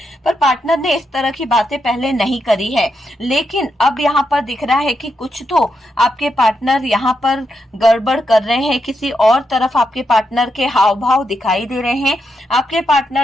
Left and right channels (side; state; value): both; normal; correlation 0.83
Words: पर पार्टनर ने इस तरह की बातें पहले नहीं करी है। लेकिन अब यहाँ पर दिख रहा है कि कुछ तो आपके पार्टनर यहाँ पर गड़बड़ कर रहे हैं, किसी और तरफ आपके पार्टनर के हाव भाव दिखाई दे रहे हैं। आपके